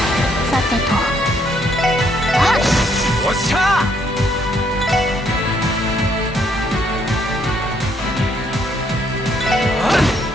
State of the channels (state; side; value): normal; both; correlation 0.70